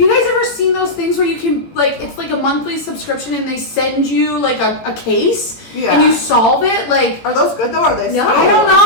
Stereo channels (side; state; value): right; late; 18 ms